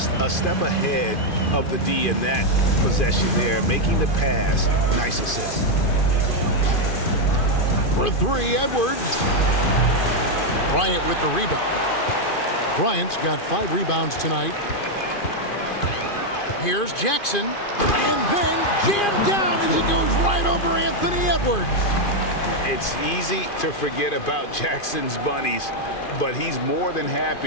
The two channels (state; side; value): late; right; 2.4 ms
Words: a step ahead of the D in that possession there, making the pass. Nice assist. For 3, Edwards. Bryant with the rebound. Bryant's got 5 rebounds tonight. Here's Jackson. And then jammed down as he goes right over Anthony Edwards. It's easy to forget about Jackson's bunnies, but he's more than